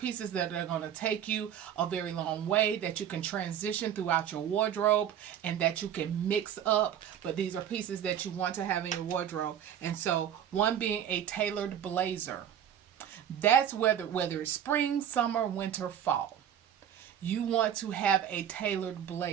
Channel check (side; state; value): left; quieter; 9.7 dB